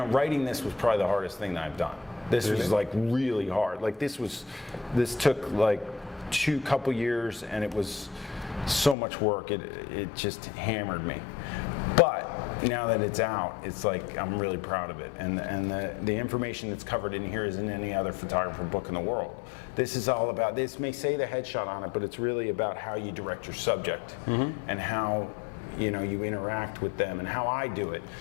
writing this was probably the hardest thing that I've done. This was like really hard. Like this took like couple years, and it was so much work. It just hammered me. But now that it's out, it's like I'm really proud of it, and the information that's covered in here isn't any other photographer book in the world. This is all about, this may say the headshot on it, but it's really about how you direct your subject and how, you know, you interact with them and how I do it,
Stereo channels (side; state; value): right; drops out; at 9.0 s